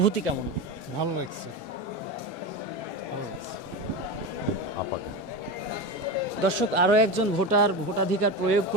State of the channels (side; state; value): both; normal; correlation 0.22